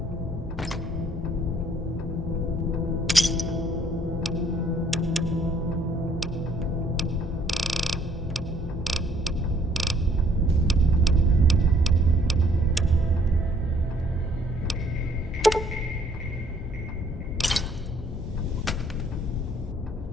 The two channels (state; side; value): normal; both; correlation 0.62